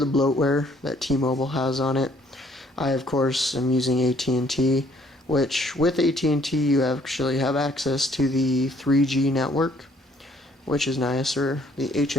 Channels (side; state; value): both; normal; correlation 0.63